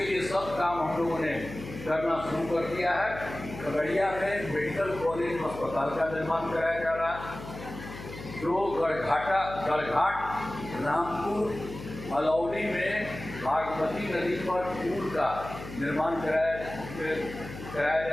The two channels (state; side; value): noise; left; hum, 12 dB below the sound